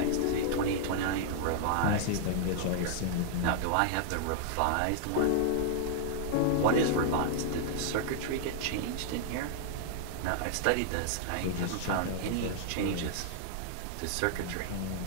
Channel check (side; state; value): both; different; correlation -0.01